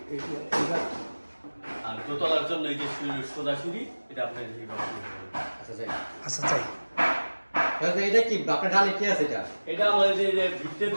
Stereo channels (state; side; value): inverted; both; correlation -1.00